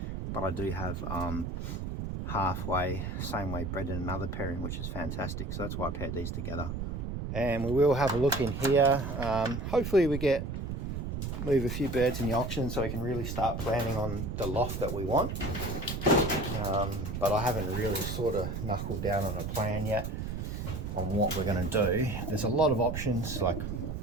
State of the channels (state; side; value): noise; right; rumble, 4 dB below the sound